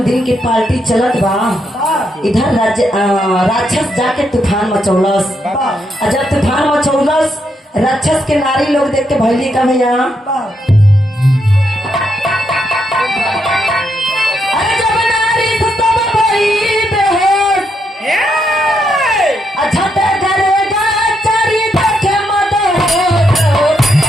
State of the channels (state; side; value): normal; both; correlation 0.79